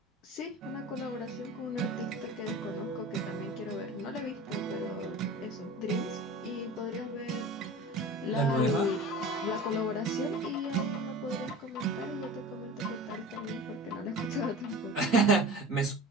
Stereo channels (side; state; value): both; normal; correlation 0.36